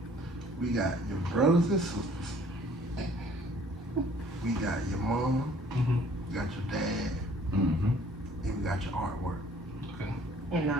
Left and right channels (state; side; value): normal; both; correlation 0.56